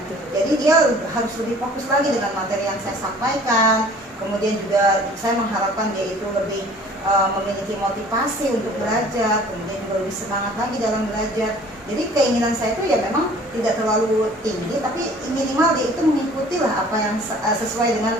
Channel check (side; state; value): both; normal; correlation 0.50